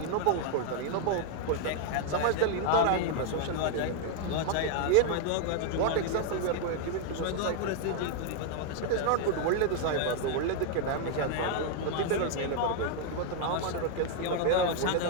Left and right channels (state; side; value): different; both; correlation 0.00